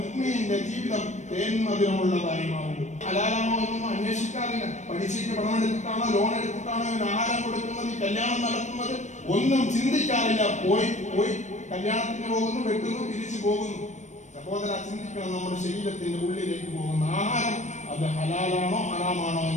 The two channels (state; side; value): late; right; 0.34 ms